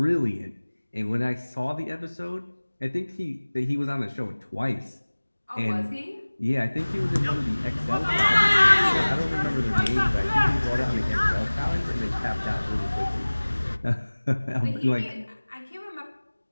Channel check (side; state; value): both; inverted; correlation -1.00